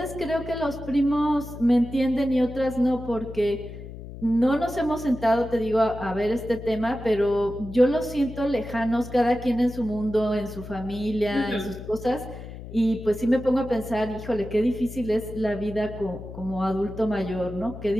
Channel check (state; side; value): noise; left; hum, 12 dB below the sound